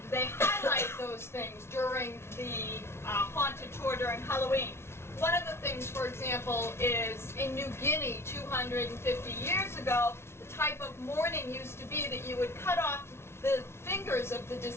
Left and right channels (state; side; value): late; right; 0.12 ms